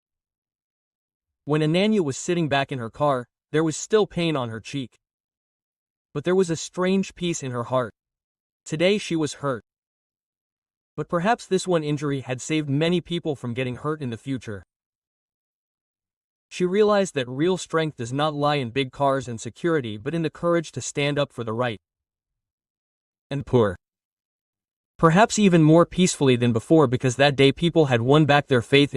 When Ananya was sitting back in her car, there was still pain on her cheek. But there was a strange peace in her heart. Today she was hurt. But perhaps this one injury had saved many people from getting hurt in the future. She realized that real strength does not lie in big cars and security, but in the courage to stand up for the right and poor. Perhaps even more peacefully than before, because that day people had won back their faith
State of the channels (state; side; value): identical; both; correlation 1.00